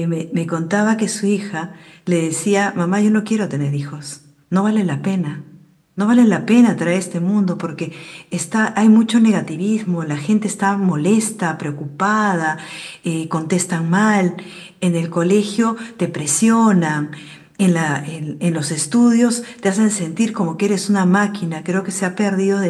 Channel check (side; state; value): both; identical; correlation 1.00